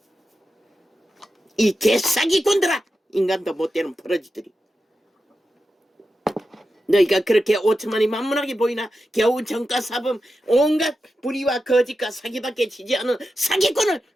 이 개사기꾼들아. 인간도 못되는 버러지들이. 너희가 그렇게 5천만이 만문하게 보이나. 겨우 정가사범 온갖 불의와 거짓과 사기밖에 지지 않은 사기꾼을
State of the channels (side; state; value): both; normal; correlation 0.90